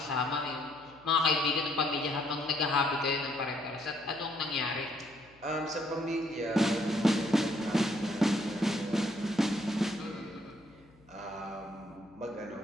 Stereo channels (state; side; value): noise; left; hum, 28 dB below the sound